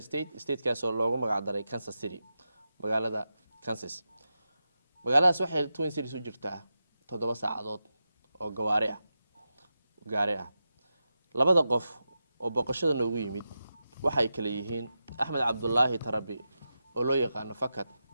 state-kaas oo loogu magac daray Kansas City magaalada Kansas magaaladaas waxay Twin Cities u jirtaa 7 saacadood oo gaari ah labada qof oo boqoshada noogu yimid waxay kala yihiin Axmed Cabdullaahi Tarabi oo loo yaqaan Fakad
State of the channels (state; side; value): inverted; both; correlation -0.90